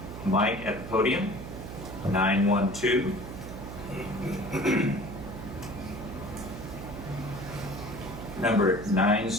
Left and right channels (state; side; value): noise; right; hum, 10 dB below the sound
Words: mic at the podium? 912. Number